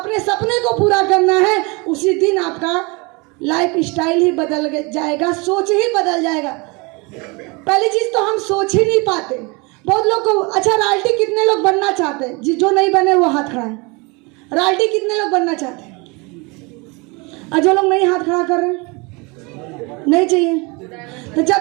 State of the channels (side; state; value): left; quieter; 28.0 dB